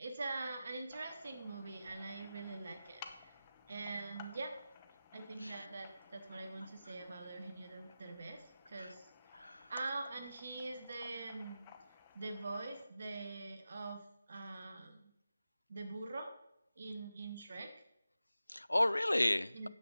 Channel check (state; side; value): inverted; both; correlation -0.93